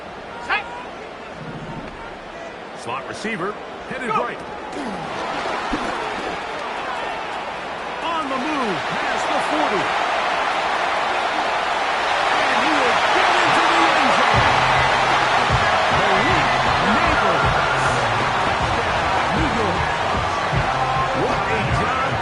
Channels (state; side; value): identical; both; correlation 1.00